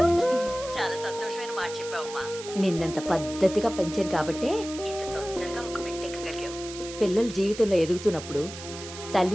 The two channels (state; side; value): noise; right; hiss, 12 dB below the sound